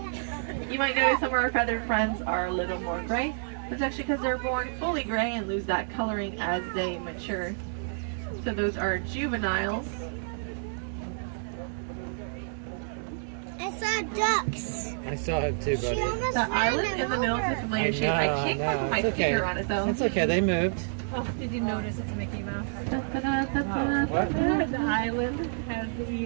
You might notice some of our feathered friends are a little more gray. That's actually because they're born fully gray and lose that coloring as they mature. So those are juveniles. I saw ducks. I saw it too, She buddy. almost The ran island them in the middle is over. a familiar shape. I can't quite put my It's okay. finger on it though. It's okay, they moved. Oh, did you notice it's Mickey Mouse? What? The island has the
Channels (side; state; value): left; silent; digital silence